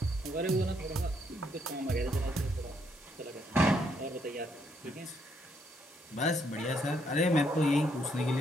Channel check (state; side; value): normal; both; correlation 0.73